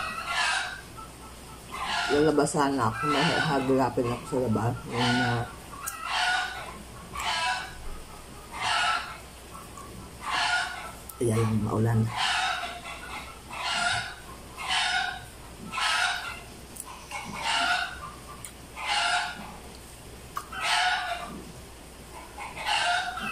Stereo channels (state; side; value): identical; both; correlation 1.00